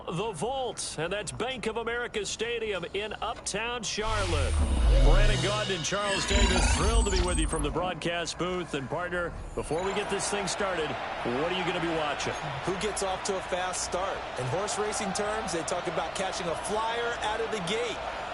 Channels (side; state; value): both; identical; correlation 1.00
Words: the Vault. And that's Bank of America Stadium in Uptown Charlotte. Brandon Gaudin and Charles Davis, thrilled to be with you from the broadcast booth. And partner, before we get this thing started, what are you going to be watching? Who gets off to a fast start? In horse racing terms, they talk about catching a flyer out of the gate.